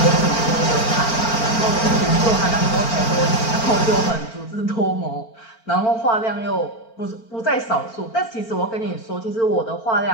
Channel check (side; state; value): right; late; 4.4 ms